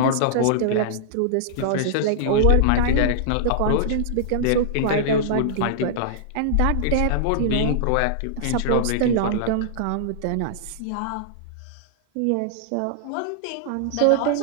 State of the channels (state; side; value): different; both; correlation -0.01